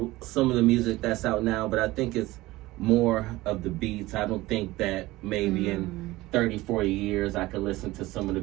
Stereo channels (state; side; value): quieter; left; 18.8 dB